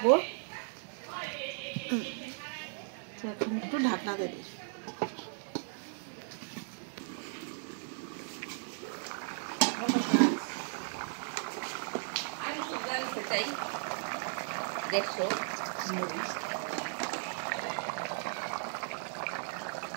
এখন একটু ঢাকনা দিয়ে দিই।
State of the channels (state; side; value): silent; left; digital silence